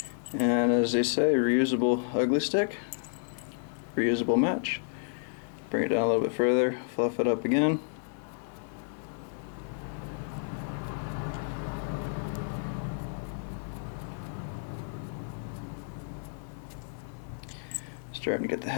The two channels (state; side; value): silent; right; digital silence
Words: And as they say, reusable ugly stick, reusable match. Bring it down a little bit further, fluff it up again. Starting to get the